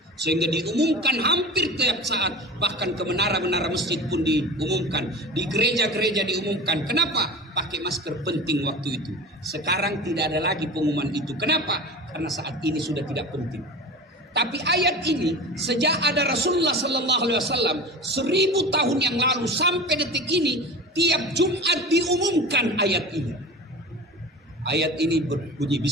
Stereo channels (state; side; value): normal; both; correlation 0.33